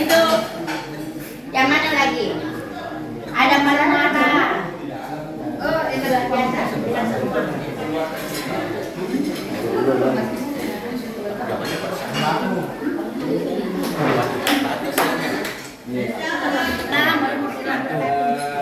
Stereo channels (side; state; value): both; identical; correlation 1.00